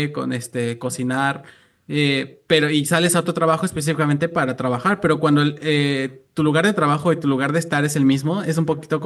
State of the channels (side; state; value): both; identical; correlation 1.00